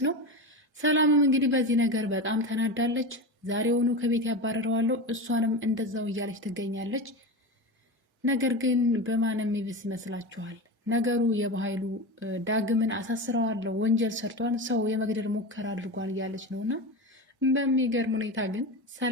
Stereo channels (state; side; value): normal; both; correlation 0.23